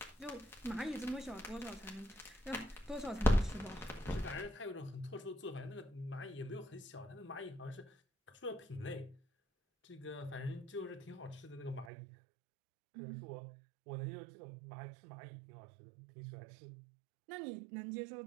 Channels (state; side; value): drops out; left; at 11.9 s